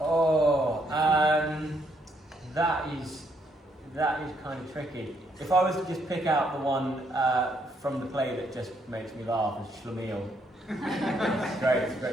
That is kind of tricky. If I was to just pick out the one from the play that just makes me laugh, it's Schlemiel. It's a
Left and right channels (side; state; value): both; normal; correlation 0.73